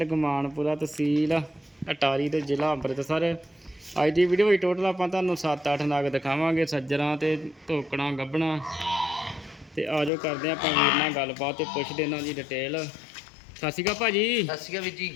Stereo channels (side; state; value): right; drops out; at 10.1 s